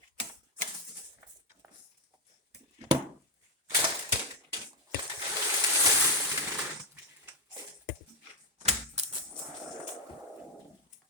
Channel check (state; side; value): normal; both; correlation 0.08